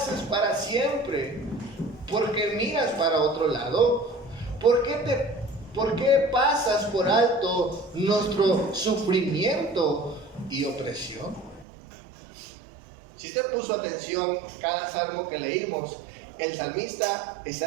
para siempre. ¿Por qué miras para otro lado? ¿Por qué pasas por alto nuestro sufrimiento y opresión? Si usted puso atención cada salmo que leímos, el salmista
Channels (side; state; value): left; drops out; at 11.7 s